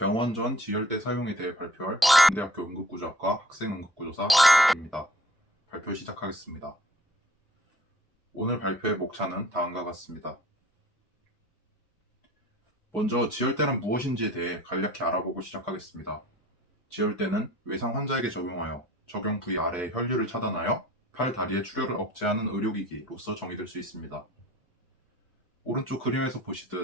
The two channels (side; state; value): both; normal; correlation 0.51